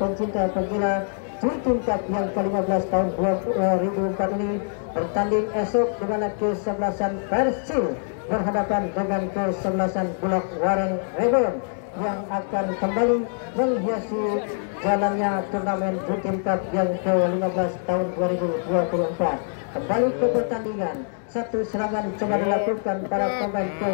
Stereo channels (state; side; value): silent; right; digital silence